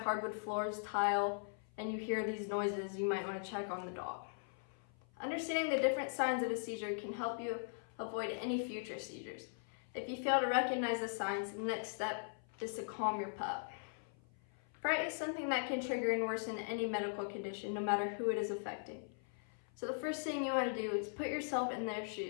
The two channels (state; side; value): silent; right; 51 dB below the other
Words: floors, tile, and you hear these noises, you might want to check on the dog. Understanding the different signs of a seizure can help you avoid any future seizures. If you fail to recognize the signs, the next step is to calm your pup. Fright is something that can trigger and worsen any medical condition, no matter who it is affecting. So the first thing you want to do is put yourself in their